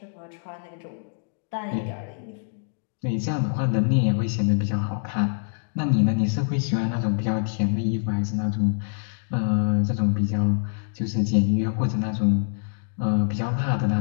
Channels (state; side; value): silent; right; digital silence